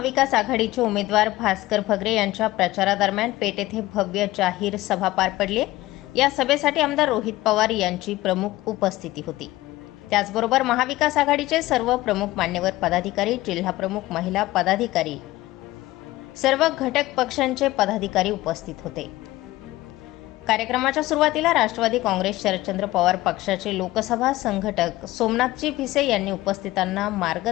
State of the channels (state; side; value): quieter; right; 17.5 dB